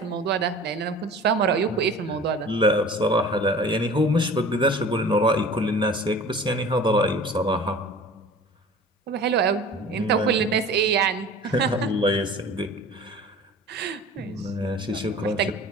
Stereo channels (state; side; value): normal; both; correlation 0.42